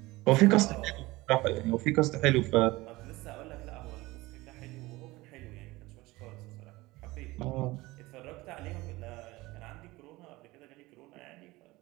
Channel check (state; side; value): quieter; left; 20.3 dB